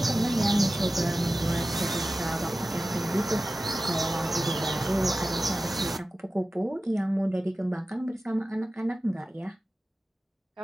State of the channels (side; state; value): both; normal; correlation 0.95